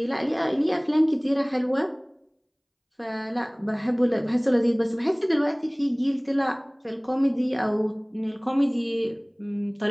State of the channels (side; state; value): both; identical; correlation 1.00